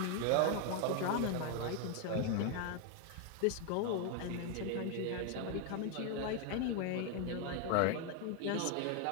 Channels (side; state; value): both; different; correlation 0.01